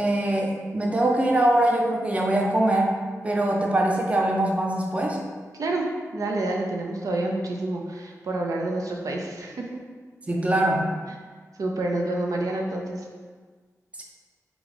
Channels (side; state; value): both; normal; correlation 0.85